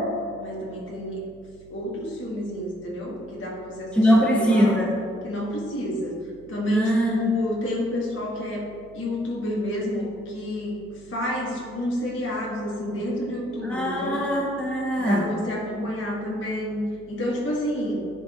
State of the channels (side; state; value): right; noise; hum, 23 dB below the sound